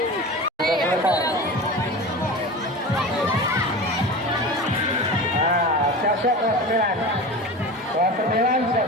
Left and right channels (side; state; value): both; normal; correlation 0.30